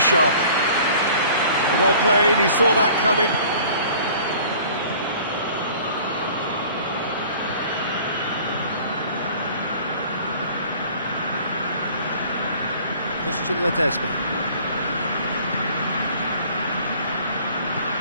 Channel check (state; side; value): inverted; both; correlation -0.49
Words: Well played, he saw that coming. Ledesma.